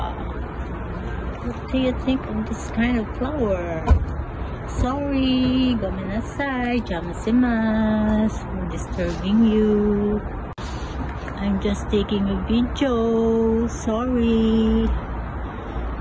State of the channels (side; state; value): both; identical; correlation 1.00